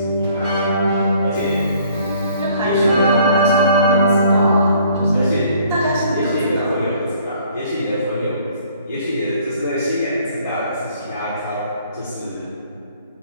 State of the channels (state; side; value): inverted; both; correlation -0.59